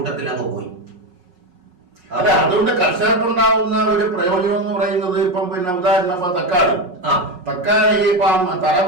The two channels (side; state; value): left; late; 5.5 ms